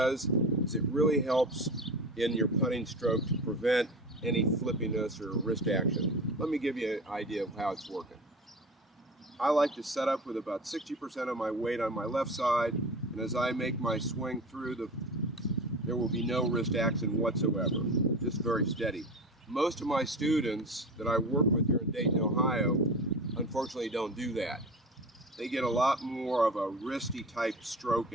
is it really helps in your putting stroke to prevent any flippiness or wrist action. Let me give you an idea of how it's working. I like to set up with about 60% of my weight on my left side, and as I make my swing through, there will be no wrist action whatsoever, just very steady. Most of my students that I work with here in Dayton, Ohio, unfortunately don't do that. They get a lot more of a wristy type stroke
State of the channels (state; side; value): normal; both; correlation 0.32